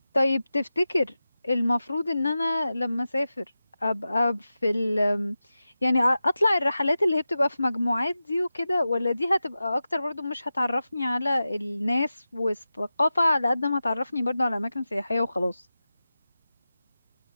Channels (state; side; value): inverted; both; correlation -0.93